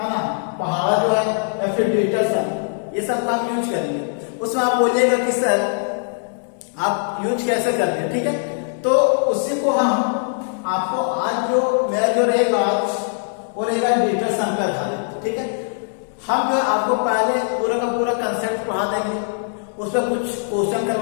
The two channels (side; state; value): right; silent; digital silence